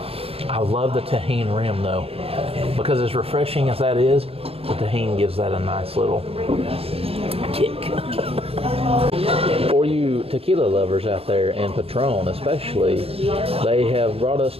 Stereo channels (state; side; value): late; left; 0.28 ms